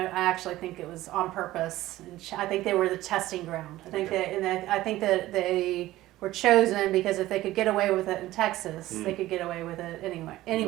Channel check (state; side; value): quieter; left; 16.1 dB